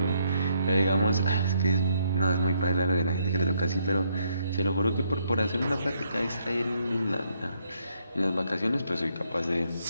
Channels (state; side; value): inverted; both; correlation -0.73